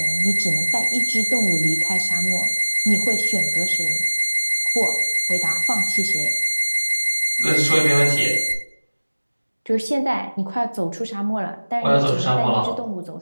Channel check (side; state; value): both; inverted; correlation -1.00